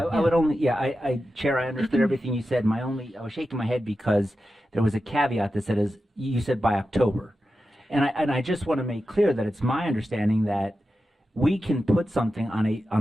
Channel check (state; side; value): normal; both; correlation 0.91